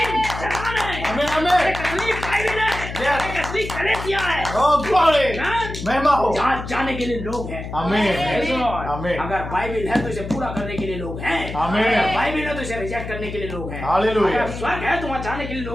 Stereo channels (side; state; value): left; noise; hum, 8 dB below the sound